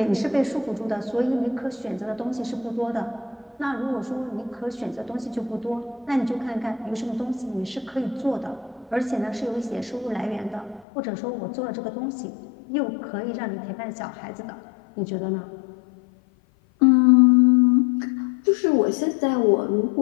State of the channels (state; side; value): drops out; right; at 10.9 s